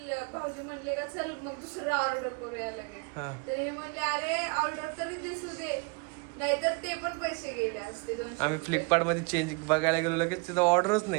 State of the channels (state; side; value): quieter; left; 31.3 dB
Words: भाऊजी म्हणले का चल मग दुसरं ऑर्डर करूया लगेच. हा. तर हे म्हणले अरे ऑर्डर तरी दिसू दे, नाहीतर ते पण पैसे गेले असते 200 आम्ही रुपये. फ्लिपकार्ट मध्ये चेंज बघायला गेलो, लगेच तिथं ऑर्डरच